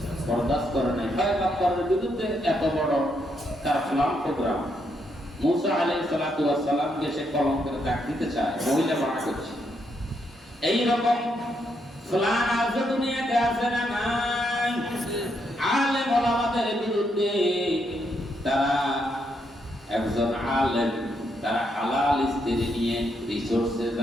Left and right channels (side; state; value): both; normal; correlation 0.78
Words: বরদাস্ত করে নাই। পয়গম্বরের বিরুদ্ধে এত বড় তার প্ল্যান প্রোগ্রাম। মুসা আলাইহিস সালাতু ওয়াস সালামকে সে কলঙ্কের দাগ দিতে চায়, মহিলা মানা করছে। এই রকম প্ল্যান আজ দুনিয়াতে আছে না নাই? আলেম ওলামাদের বিরুদ্ধে তারা একজন আলেম, তারা হালাল স্ত্রী নিয়ে রিসোর্সে